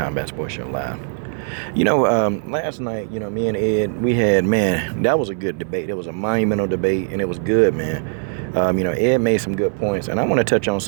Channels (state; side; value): silent; left; 61 dB below the other